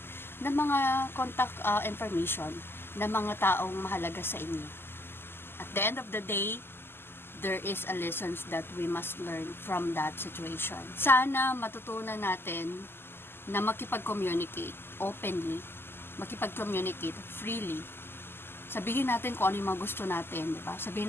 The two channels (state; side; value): late; right; 0.11 ms